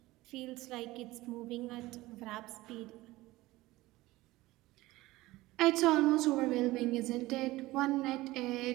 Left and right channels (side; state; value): left; quieter; 18.7 dB